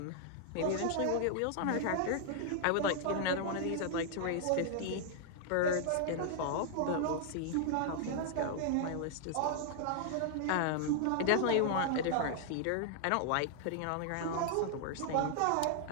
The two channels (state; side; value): different; both; correlation 0.00